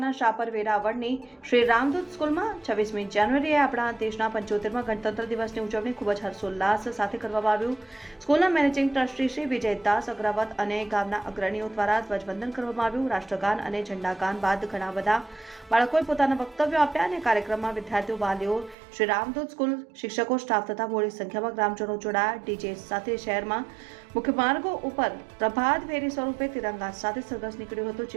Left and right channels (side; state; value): left; drops out; at 18.8 s